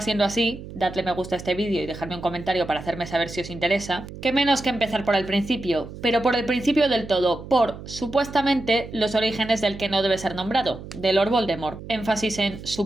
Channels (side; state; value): right; noise; hum, 13 dB below the sound